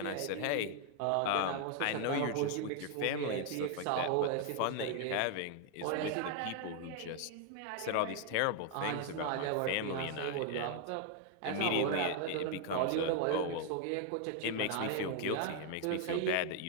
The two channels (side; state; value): both; different; correlation 0.00